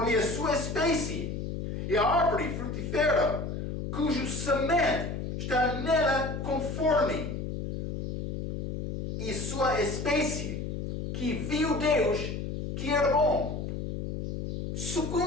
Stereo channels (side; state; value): left; noise; hum, 5 dB below the sound